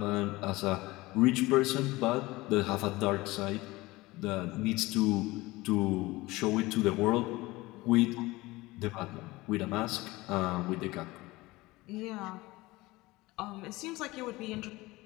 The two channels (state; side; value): quieter; right; 20.4 dB